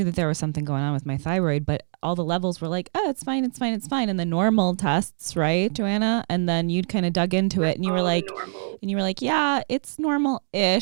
that there was something going on with my thyroid, but all the levels were like, oh, it's fine, it's fine, it's fine. And the normal tests, right, Joanna? And then you'd kind of dug into it and you were All the like, normal. yeah, it's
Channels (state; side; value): silent; left; digital silence